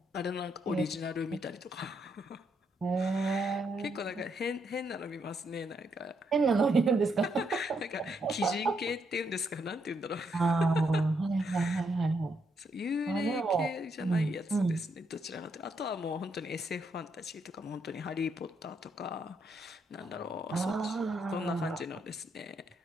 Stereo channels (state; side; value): normal; both; correlation 0.77